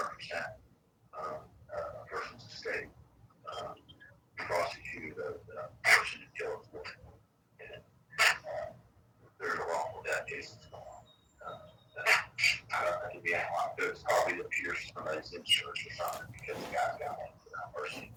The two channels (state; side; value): identical; both; correlation 1.00